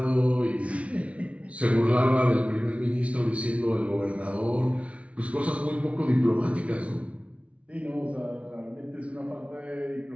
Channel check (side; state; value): left; late; 0.063 ms